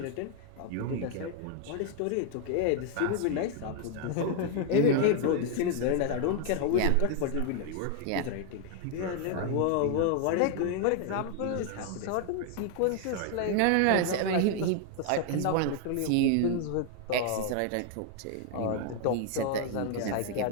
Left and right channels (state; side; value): different; both; correlation 0.00